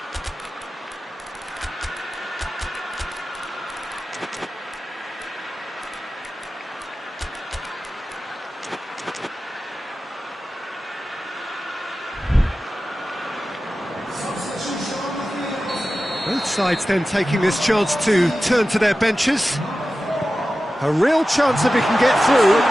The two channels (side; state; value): both; normal; correlation 0.94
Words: Both sides then taking this chance to turn to their benches. A real chance if he can get through.